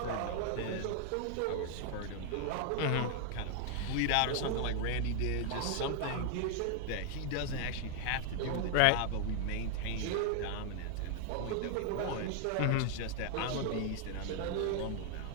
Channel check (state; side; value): different; both; correlation 0.00